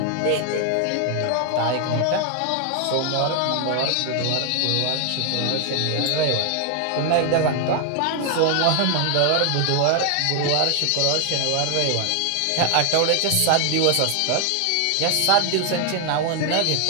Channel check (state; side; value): different; both; correlation 0.00